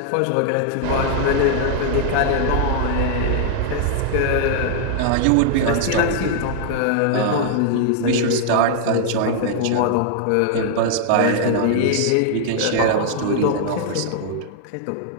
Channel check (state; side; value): different; both; correlation 0.00